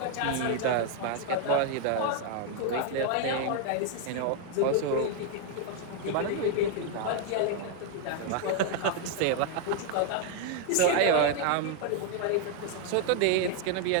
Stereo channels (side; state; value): both; different; correlation 0.00